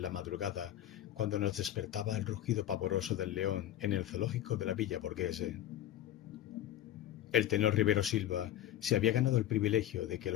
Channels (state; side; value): quieter; right; 12.6 dB